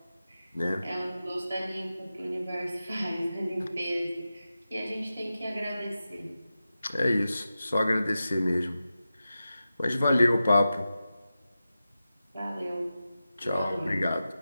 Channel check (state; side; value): inverted; both; correlation -0.93